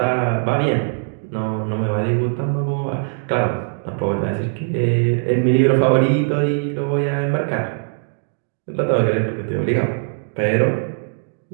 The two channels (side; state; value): left; silent; 56 dB below the other